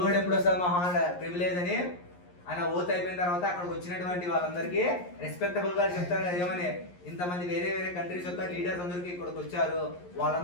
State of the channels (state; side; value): late; right; 11 ms